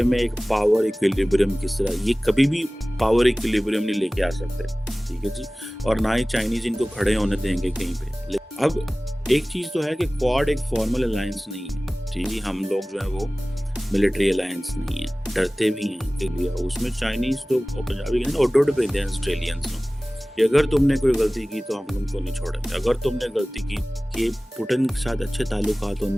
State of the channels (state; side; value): normal; both; correlation 0.98